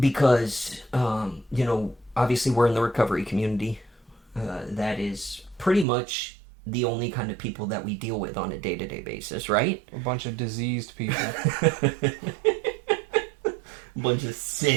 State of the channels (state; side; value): drops out; left; at 5.9 s